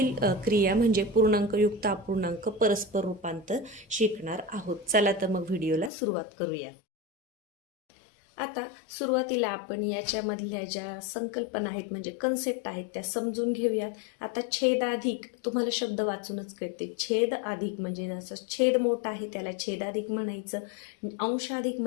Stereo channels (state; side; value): drops out; right; at 5.9 s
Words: क्रिया म्हणजे पूर्णांकयुक्त अपूर्णांक परस्पर रूपांतर शिकणार आहोत. चला तर मग व्हिडिओला सुरुवात करूया. आता सुरुवातीला आपण याच्यामधल्या ज्या संकल्पना आहेत म्हणजे कन्सेप्ट आहेत त्या समजून घेऊयात. आता छेदाधिक तुम्हाला शब्द वाचूनच कळते. छेद अधिक म्हणजे जसं छेद मोठा आहे त्याला छेदाधिक म्हणायचं, अंशाधिक